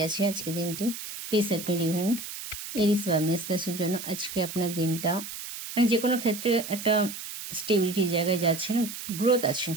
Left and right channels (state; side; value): noise; right; hiss, 9 dB below the sound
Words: আছে আজকে দিনটি? Please set me divine. Aries বা মেষ রাশির জন্য আজকে আপনার দিনটা, মানে যে কোনো ক্ষেত্রে একটা স্টেবিলিটির জায়গায় যাচ্ছেন, গ্রোথ আছে,